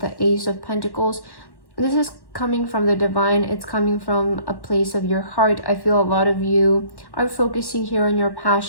the Ace of Pentacles. This is coming from the divine. It's coming from a place of your heart. I feel a lot of you are focusing here on your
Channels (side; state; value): right; late; 1.1 ms